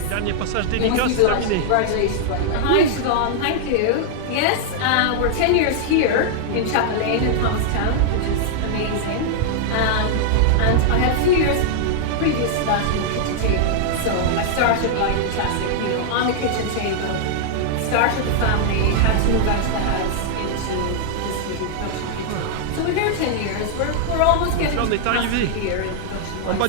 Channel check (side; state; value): both; different; correlation -0.01